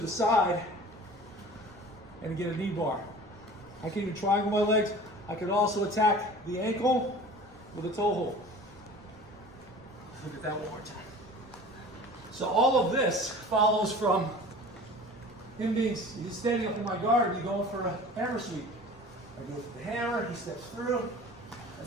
the side and get a knee bar. I can even triangle my legs. I could also attack the ankle with a toe hold. Look at that one more time. So all of this follows from him he's standing up in my guard and he's going for a hammer sweep. I go for the hammer, he steps through.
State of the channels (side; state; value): right; noise; rumble, 25 dB below the sound